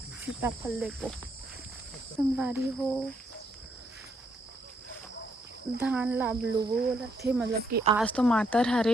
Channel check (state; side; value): normal; both; correlation 0.74